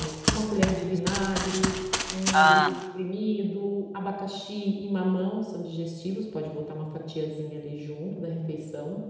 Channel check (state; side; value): identical; both; correlation 1.00